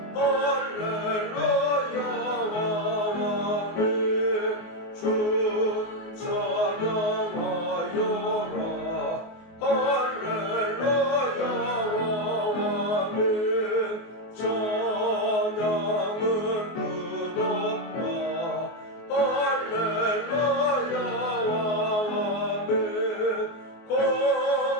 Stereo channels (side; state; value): right; late; 24 ms